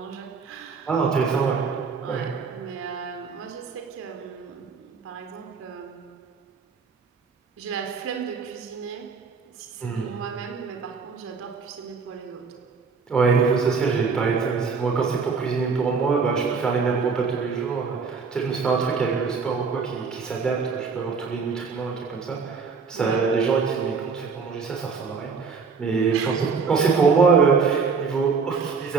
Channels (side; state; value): left; quieter; 5.2 dB